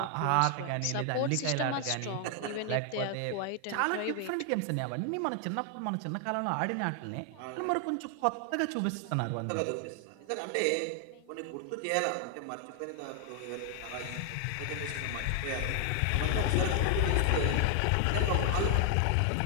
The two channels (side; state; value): both; different; correlation 0.00